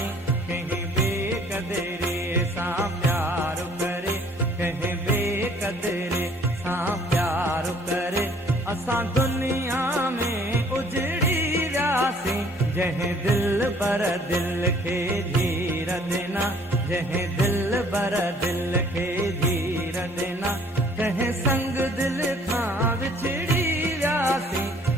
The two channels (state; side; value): normal; both; correlation 0.57